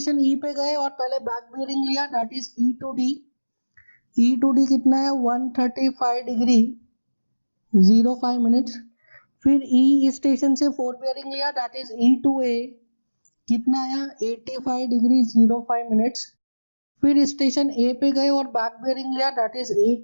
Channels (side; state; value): both; inverted; correlation -1.00